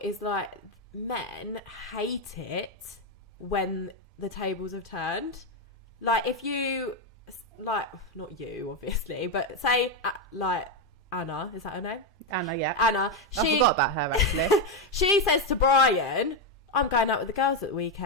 is like, men hate it when the tables have turned. Like, if you, like, not you, obviously, but say, like, Anna, is that her name? Anna, yeah. Anna. I forgot about her, actually. She says to Brian, I'm going out with the girls at the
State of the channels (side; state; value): both; normal; correlation 0.06